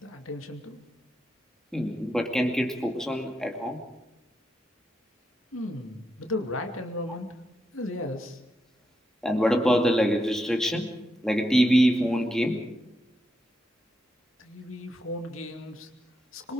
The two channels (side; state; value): both; normal; correlation 0.84